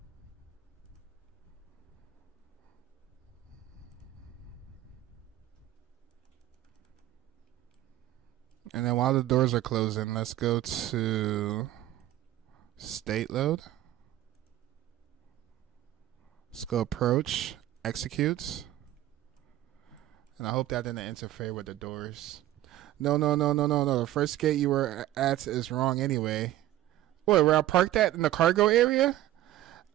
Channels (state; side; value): quieter; left; 14.2 dB